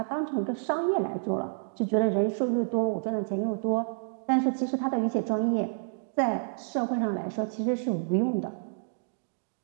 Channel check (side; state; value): left; silent; digital silence